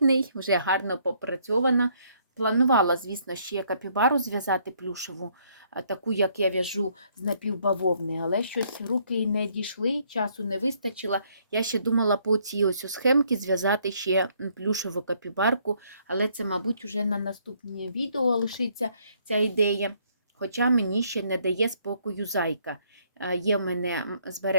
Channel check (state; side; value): inverted; both; correlation -0.67